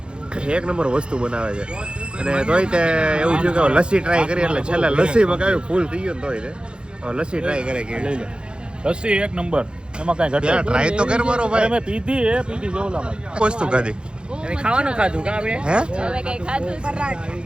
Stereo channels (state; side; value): late; left; 0.052 ms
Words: એક નંબર વસ્તુ બનાવે છે અને તોય તે એવું થયું કે લસ્સી ટ્રાય કરી એટલે છેલ્લે લસ્સી મગાવી ફૂલ થઈ ગયું તોય તે લસ્સી ટ્રાય કરે કે લસ્સી એક નંબર એમાં કાંઈ ઘટે ટ્રાય તો કર મારો ભાઈ. અમે પીધી જોલામાં વસ્તુ ખાધી ખાવાનું ખાધું કા આપણે હે હવે કઈ ખાધું છે?